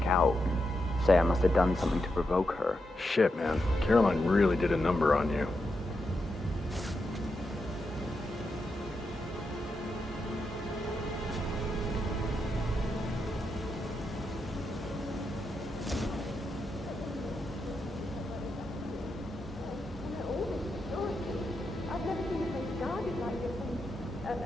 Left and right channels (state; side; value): normal; both; correlation 0.85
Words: out. And say I must have done something to provoke her. Shit, man. Caroline really did a number on you.